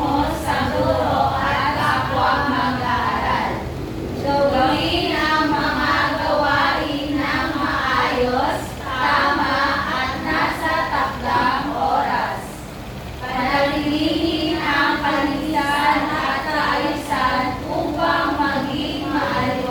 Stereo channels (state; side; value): identical; both; correlation 1.00